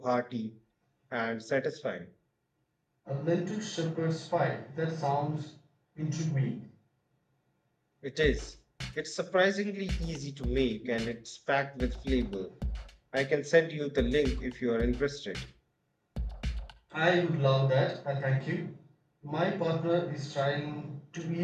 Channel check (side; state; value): both; identical; correlation 1.00